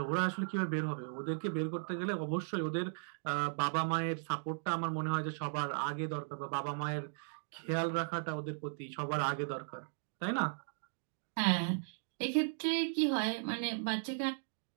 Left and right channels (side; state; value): left; silent; digital silence